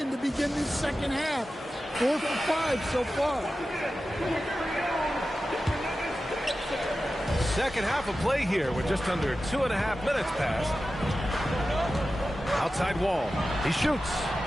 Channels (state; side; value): normal; both; correlation 0.93